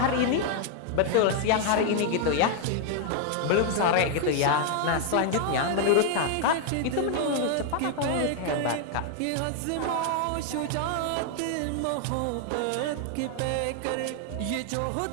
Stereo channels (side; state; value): both; different; correlation 0.00